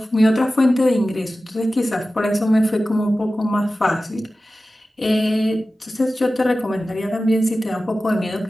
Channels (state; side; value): normal; both; correlation 0.95